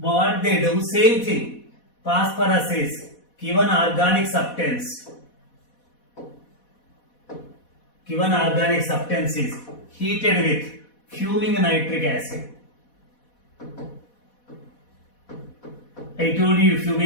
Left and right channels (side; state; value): right; late; 4.1 ms